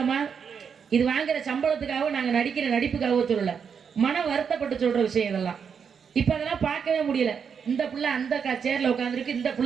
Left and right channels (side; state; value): left; quieter; 6.8 dB